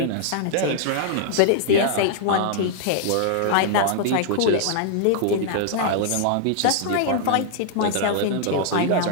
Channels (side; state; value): both; different; correlation -0.01